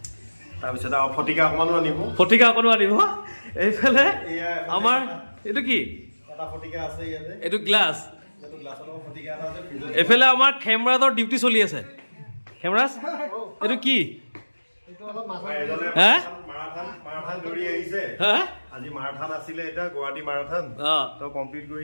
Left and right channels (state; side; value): inverted; both; correlation -1.00